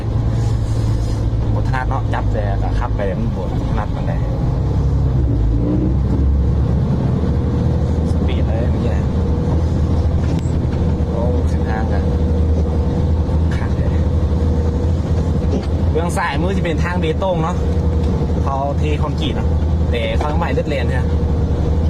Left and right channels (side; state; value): both; identical; correlation 1.00